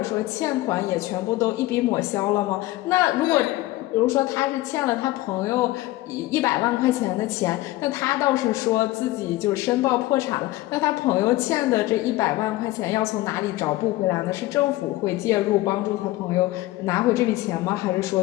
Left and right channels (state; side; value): quieter; right; 17.7 dB